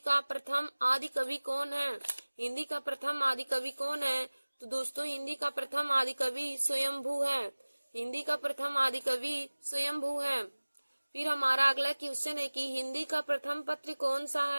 प्रथम आदि कवि कौन है। हिंदी का प्रथम आदि कवि कौन है, तो दोस्तों हिंदी का प्रथम आदि कवि स्वयंभू है। हिंदी का प्रथम आदि कवि स्वयंभू है। फिर हमारा अगला क्वेश्चन है कि हिंदी का प्रथम पत्र कौन सा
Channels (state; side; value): inverted; both; correlation -1.00